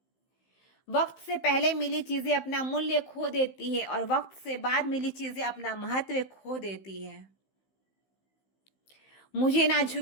वक्त से पहले मिली चीजें अपना मूल्य खो देती है और वक्त से बाद मिली चीजें अपना महत्व खो देती है। मुझे ना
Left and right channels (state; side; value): late; right; 15 ms